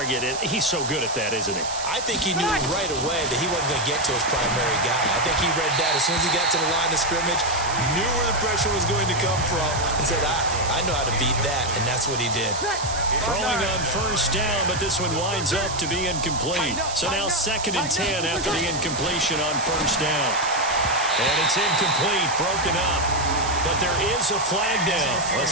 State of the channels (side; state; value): right; noise; hiss, 8 dB below the sound